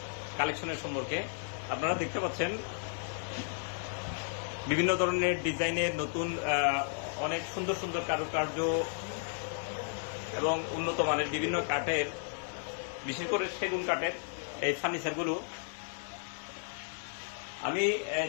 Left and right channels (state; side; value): silent; right; 55 dB below the other